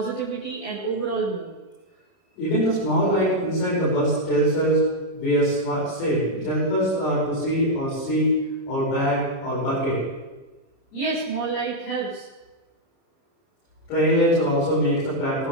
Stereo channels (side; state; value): right; late; 30 ms